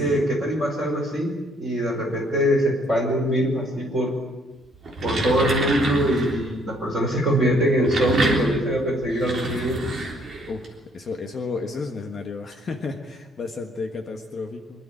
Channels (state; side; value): normal; both; correlation 0.64